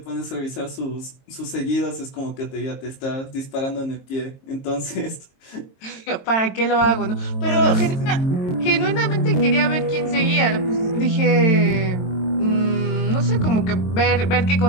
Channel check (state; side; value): late; right; 22 ms